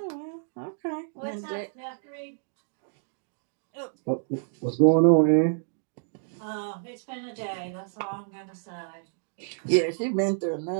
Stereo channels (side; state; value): left; silent; digital silence